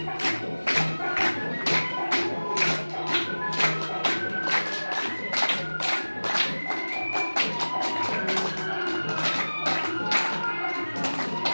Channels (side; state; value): both; inverted; correlation -1.00